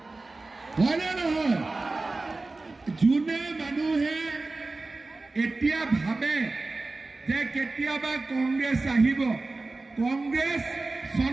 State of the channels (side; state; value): left; quieter; 3.4 dB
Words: হয়নে নহয় যোনে মানুহে এতিয়া ভাবে যে কেতিয়াবা কংগ্ৰেছ আহিব কংগ্ৰেছ